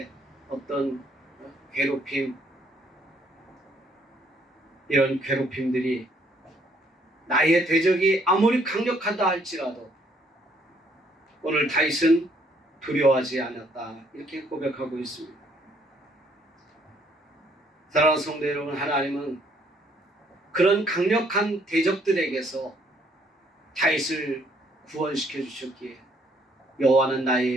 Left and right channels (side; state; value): both; normal; correlation 0.66